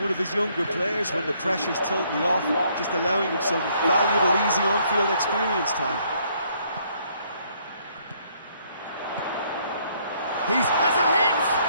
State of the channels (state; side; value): inverted; both; correlation -0.67